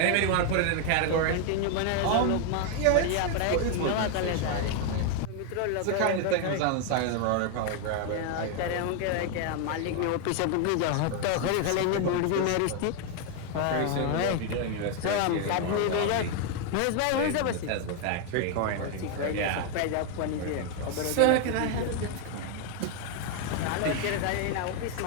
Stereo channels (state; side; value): different; both; correlation 0.01